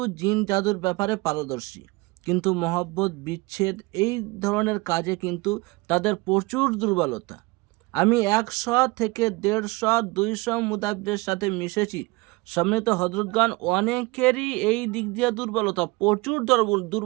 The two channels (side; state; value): left; quieter; 23.8 dB